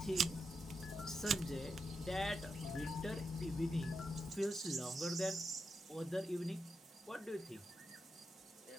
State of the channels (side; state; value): both; normal; correlation 0.85